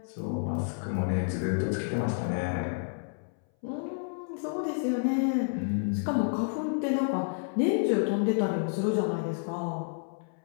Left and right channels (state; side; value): silent; right; 58 dB below the other